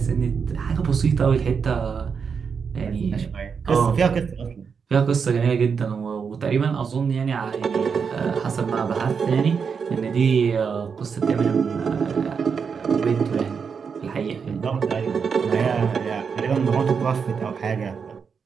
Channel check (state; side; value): quieter; left; 6.1 dB